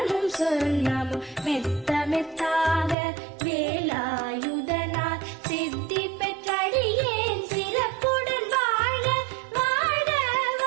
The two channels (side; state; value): left; drops out; at 3.0 s